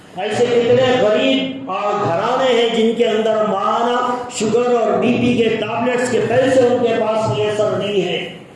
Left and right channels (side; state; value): both; identical; correlation 1.00